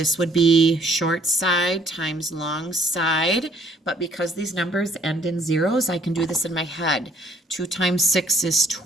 would be short side times long side, but because these numbers end in zeros, I can do this in my head. 2 times 6 is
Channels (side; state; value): both; normal; correlation 0.62